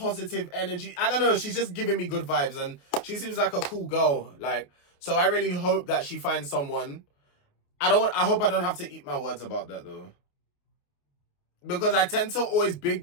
energy. I don't know. She's just giving me good vibes. And she seems like a cool girl. Like, so I really hope that she finds someone. I hope I don't have to eat my words about that, though. Because I tend to always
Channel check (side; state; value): right; late; 28 ms